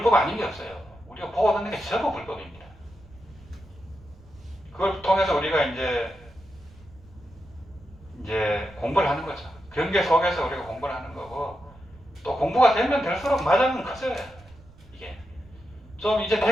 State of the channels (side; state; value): right; noise; rumble, 23 dB below the sound